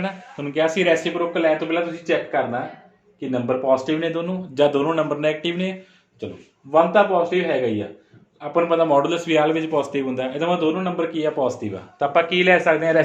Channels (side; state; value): both; identical; correlation 1.00